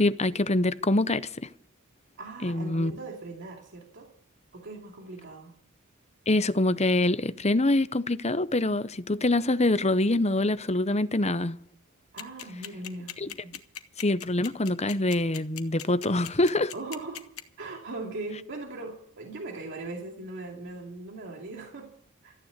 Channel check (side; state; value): both; normal; correlation 0.58